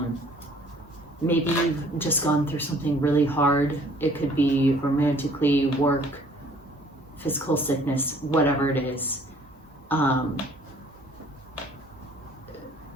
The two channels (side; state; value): both; normal; correlation 0.56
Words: Maybe you've just gone through something really hard. It could be romantically, work, physical sickness, whatever it is.